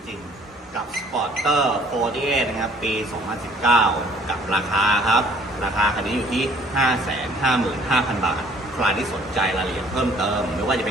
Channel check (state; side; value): normal; both; correlation 0.57